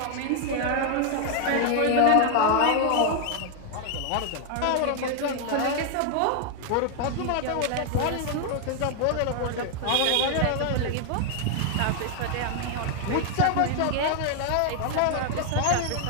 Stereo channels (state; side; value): different; both; correlation 0.00